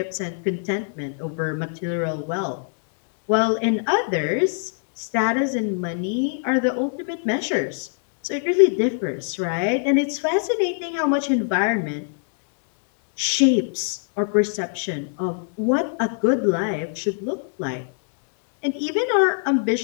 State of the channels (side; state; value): right; silent; 63 dB below the other